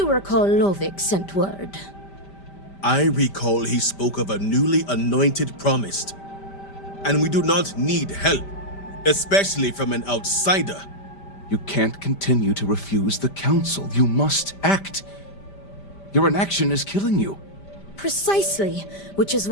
recall Lovick sent word. I recall he spoke of a newly anointed promised. And we do not need help, especially from an outsider. You can't continue to refuse the council. You must act. Your inaction is killing you. Precisely, which is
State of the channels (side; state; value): right; late; 5.1 ms